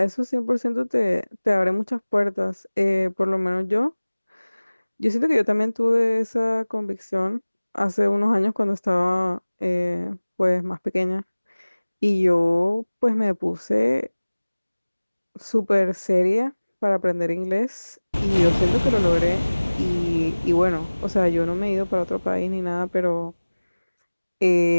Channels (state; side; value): inverted; both; correlation -1.00